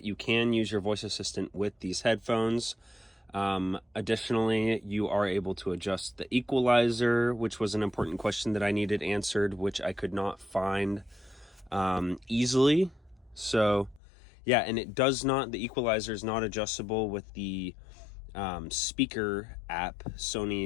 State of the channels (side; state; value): right; drops out; at 14.0 s